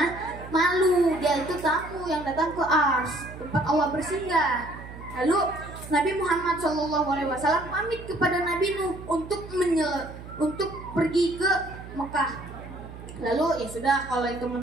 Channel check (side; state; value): right; noise; hum, 14 dB below the sound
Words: malu. Dia itu tamu yang datang ke Ars, tempat Allah bersinggah. Lalu Nabi Muhammad SAW pamit kepada Nabi Nuh untuk pergi ke Mekah. Lalu, ya sudah kalau itu